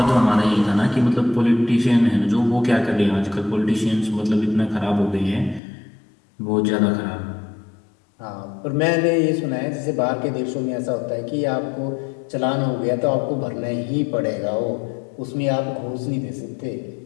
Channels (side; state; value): right; drops out; at 5.6 s